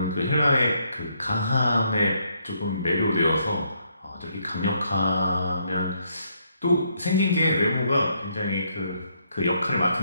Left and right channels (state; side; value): inverted; both; correlation -0.73